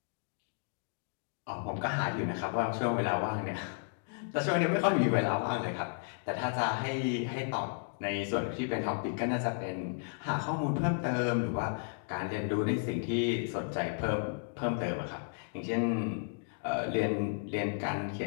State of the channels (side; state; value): right; silent; digital silence